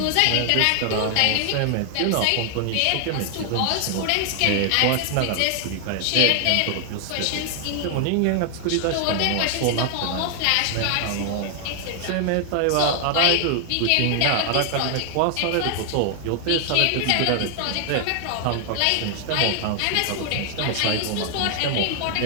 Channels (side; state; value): both; different; correlation 0.00